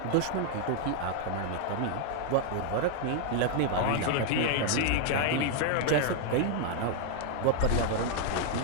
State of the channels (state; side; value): different; both; correlation 0.00